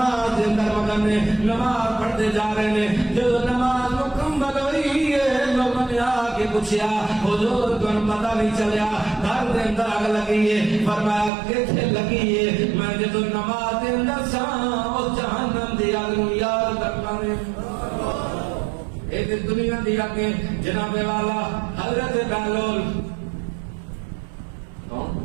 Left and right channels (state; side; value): drops out; left; at 11.3 s